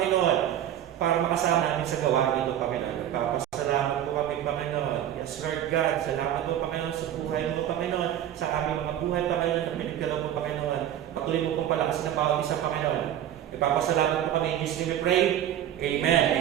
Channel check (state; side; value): quieter; left; 11.1 dB